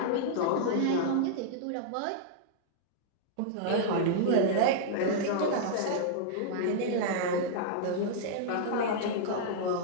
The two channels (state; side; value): different; both; correlation -0.01